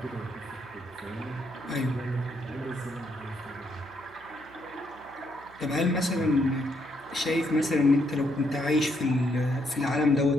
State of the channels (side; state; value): right; noise; hum, 25 dB below the sound